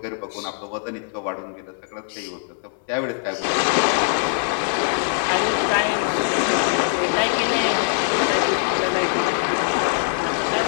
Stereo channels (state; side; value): silent; right; 64 dB below the other